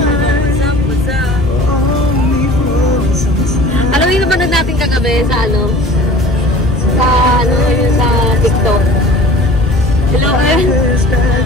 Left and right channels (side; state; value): both; normal; correlation 0.44